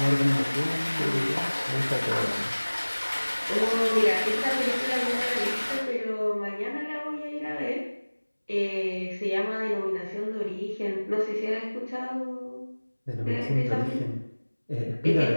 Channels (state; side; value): inverted; both; correlation -1.00